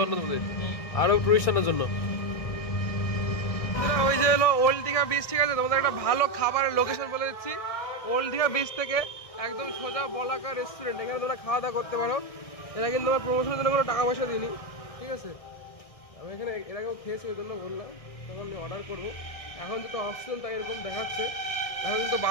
আরো টুরিস্টারদের জন্য। ওই যে হলো ওল্ড দীঘা বিচ, ঠিক আছে? তোমাদের একটা ভালো খাবারের লোকেশন বলে দিচ্ছি। ওল্ড দীঘা বিচ থেকে একদম সোজা বলাকা রেস্টুরেন্ট, এখানে তোমরা খাওয়া দাওয়া করতে পারো। এরা কিন্তু আমার প্রমোশনের জন্য কোনো টাকা পয়সা দিইনি, ঠিক আছে? আমি এখানে এর আগেও খেয়েছি, ওই জন্য বললাম, তখন আমি অর্ডার করবো। এখন যেহেতু অপশন তাই এরকম দেখাচ্ছে। এখন কিন্তু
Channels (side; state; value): right; late; 1.6 ms